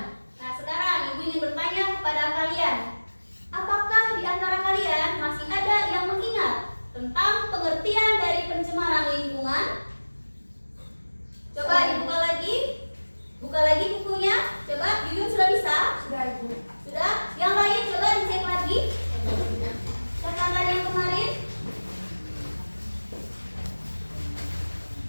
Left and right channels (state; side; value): inverted; both; correlation -1.00